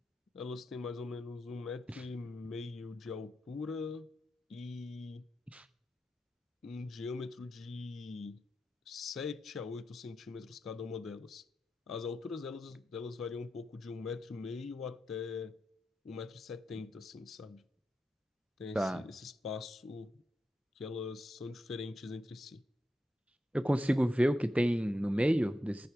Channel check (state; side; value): normal; both; correlation 0.88